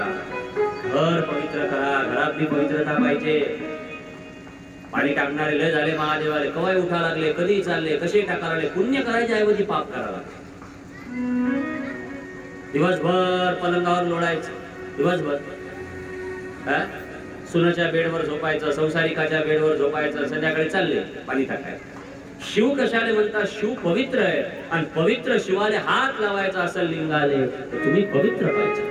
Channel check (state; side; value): identical; both; correlation 1.00